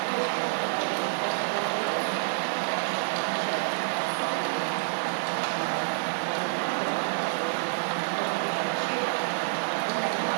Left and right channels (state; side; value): silent; left; 59 dB below the other